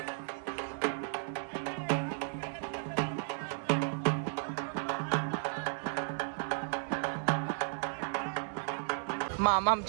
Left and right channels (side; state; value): left; silent; digital silence